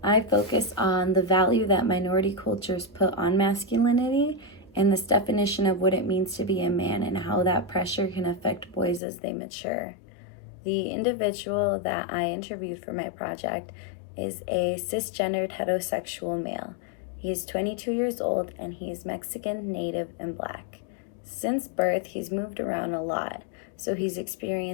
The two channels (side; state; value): right; drops out; at 9.0 s